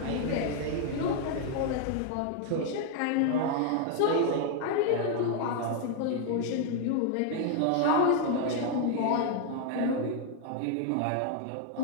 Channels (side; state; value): both; different; correlation 0.00